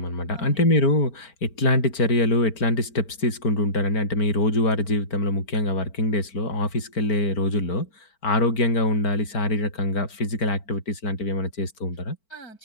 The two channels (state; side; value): late; right; 4.4 ms